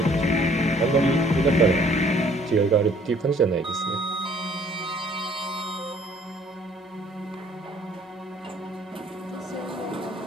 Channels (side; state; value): both; normal; correlation 0.58